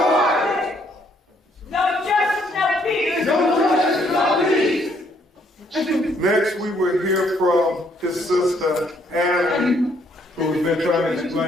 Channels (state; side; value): normal; both; correlation 0.68